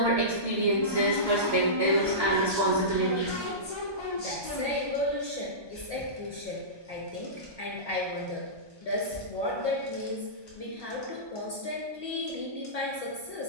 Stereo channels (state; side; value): late; left; 1.2 ms